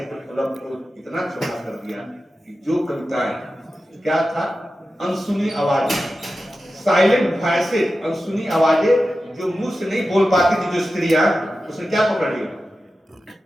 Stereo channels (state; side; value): normal; both; correlation 0.93